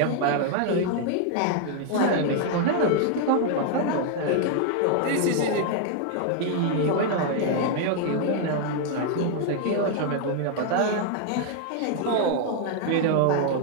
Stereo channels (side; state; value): both; different; correlation 0.00